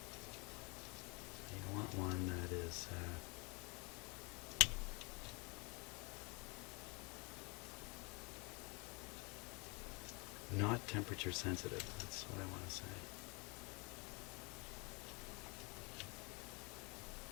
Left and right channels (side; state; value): right; quieter; 30.1 dB